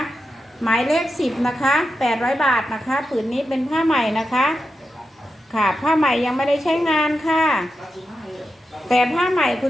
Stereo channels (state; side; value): normal; both; correlation 0.89